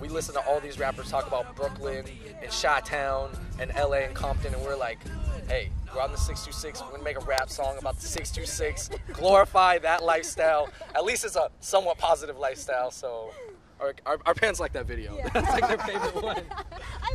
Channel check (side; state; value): both; identical; correlation 1.00